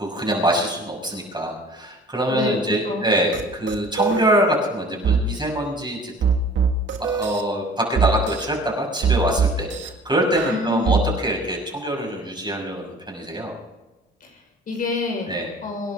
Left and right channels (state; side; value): normal; both; correlation 0.47